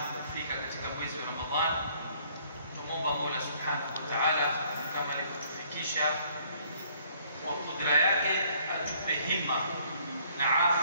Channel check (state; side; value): inverted; both; correlation -0.62